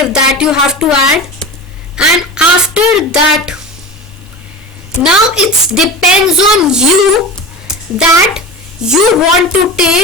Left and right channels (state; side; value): normal; both; correlation 0.30